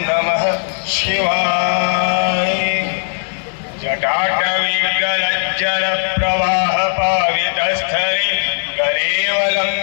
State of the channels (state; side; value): silent; right; digital silence